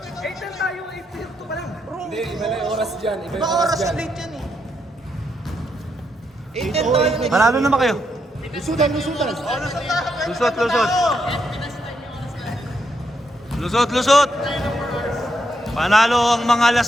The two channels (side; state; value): both; normal; correlation 0.79